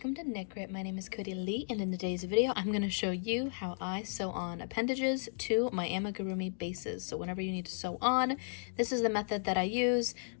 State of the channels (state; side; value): silent; right; digital silence